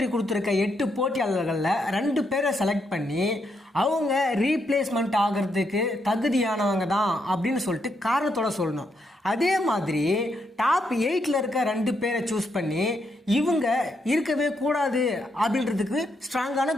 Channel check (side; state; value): both; normal; correlation 0.79